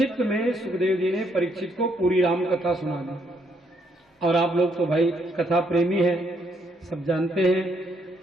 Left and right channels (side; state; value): both; normal; correlation 0.72